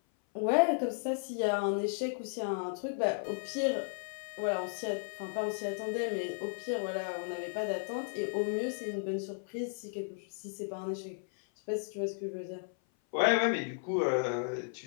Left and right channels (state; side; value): silent; right; 55 dB below the other